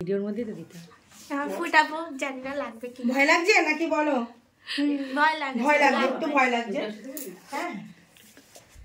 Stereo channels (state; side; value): identical; both; correlation 1.00